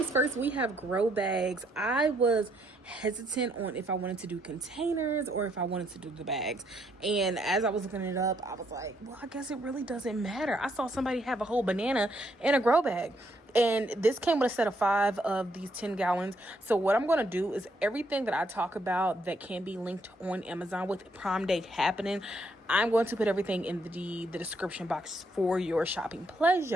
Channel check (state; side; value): normal; both; correlation 0.72